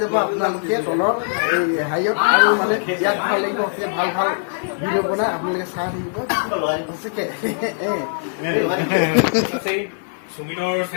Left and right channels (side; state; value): right; silent; digital silence